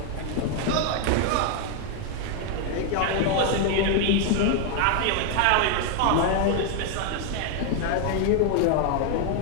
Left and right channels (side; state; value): both; different; correlation 0.01